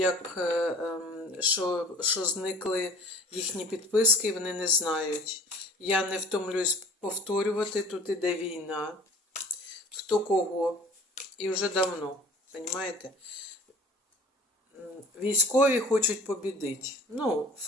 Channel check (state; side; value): normal; both; correlation 0.47